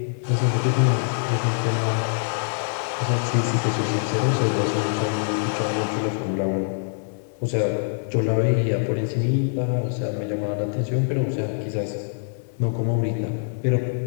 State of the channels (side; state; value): right; silent; digital silence